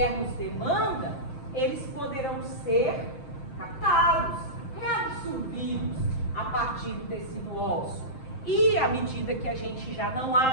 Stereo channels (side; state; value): right; late; 7.6 ms